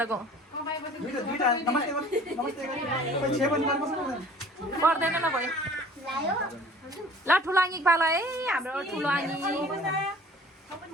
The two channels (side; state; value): both; normal; correlation 0.49